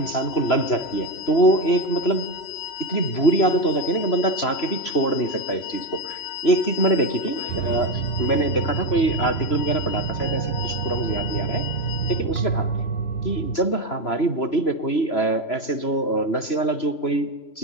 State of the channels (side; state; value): right; late; 3.0 ms